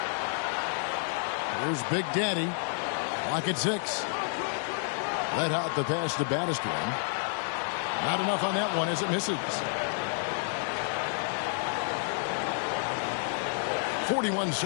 Here's Big Daddy. Lock at 6. Red Hot the pass to baddest one. Not enough on that one as it misses. 41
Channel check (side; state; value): right; silent; 58 dB below the other